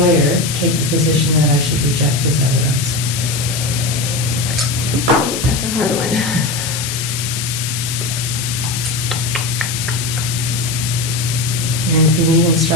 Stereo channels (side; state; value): left; noise; hiss, 4 dB below the sound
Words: take the position that I should reject his evidence? Ooh, that's a hard one. And if you need